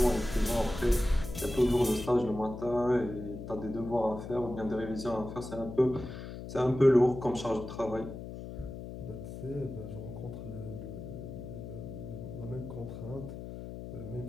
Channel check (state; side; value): noise; left; hum, 9 dB below the sound